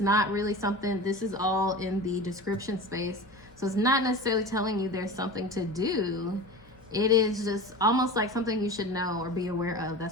really something, this is all in the description space. So it's not necessarily telling you there's something to do. It is just almost like something you should know or be aware of. That's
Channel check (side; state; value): both; normal; correlation 0.32